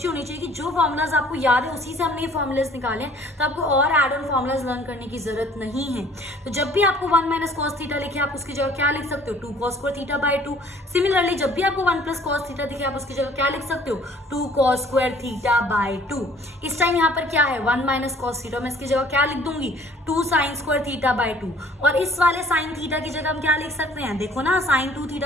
होनी चाहिए कि जो फॉर्मुलाज आपको याद है उसी से हमने ये फॉर्मुलाज निकाले, तो आपको और एड ऑन फॉर्मुलाज लर्न करने की जरूरत नहीं है। तो जब भी आपको 1 माइनस कॉस थीटा लिखे आप उसकी जगह क्या लिख सकते हो, 2 cos square theta by 2। Similarly जब भी आपको 1 प्लस कॉस थीटा दिखे आप उसकी जगह क्या लिख सकते हो, 2 कॉस स्क्वायर थीटा बाय 2। इस टाइम यहाँ पर क्या है 1 माइनस कॉस थीटा, मैं इसकी जगह क्या लिख दूंगी 2 साइन स्क्वायर थीटा बाय 2। और इस वाले साइन थीटा की जगह हम क्या लिख सकते हैं, देखो ना साइन 2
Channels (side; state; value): both; normal; correlation 0.55